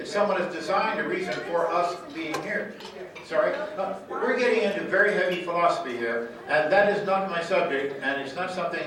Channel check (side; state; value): both; identical; correlation 1.00